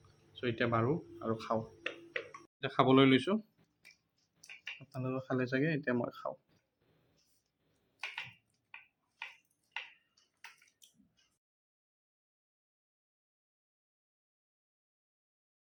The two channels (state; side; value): identical; both; correlation 1.00